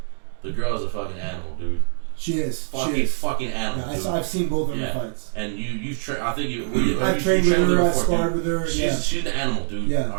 the girl is a fucking animal, dude. She is. Fucking animal. Yeah, I've seen both of her fights. And you've trained. I think I've trained with her. I sparred with her. She's an animal, dude. Yeah. All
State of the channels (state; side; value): silent; left; digital silence